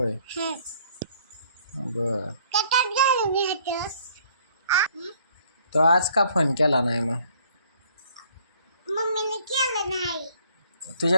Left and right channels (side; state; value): both; inverted; correlation -0.61